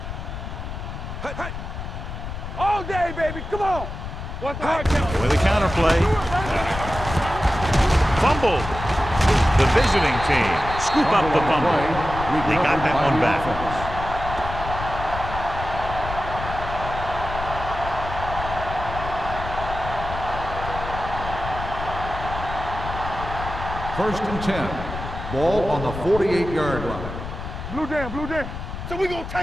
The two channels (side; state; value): left; noise; rumble, 8 dB below the sound